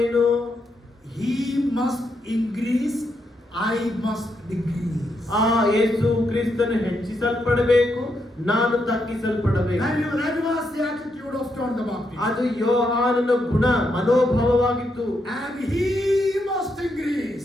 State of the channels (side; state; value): both; normal; correlation 0.80